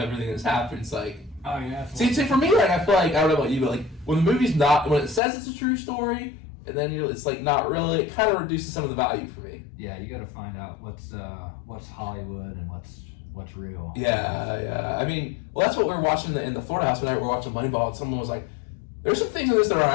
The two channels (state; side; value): drops out; right; at 5.2 s